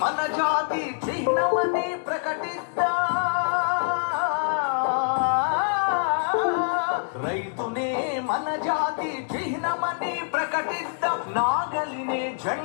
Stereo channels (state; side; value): silent; right; digital silence